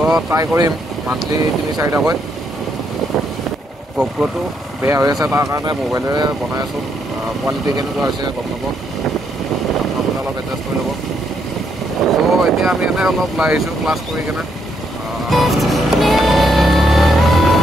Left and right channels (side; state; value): both; normal; correlation 0.75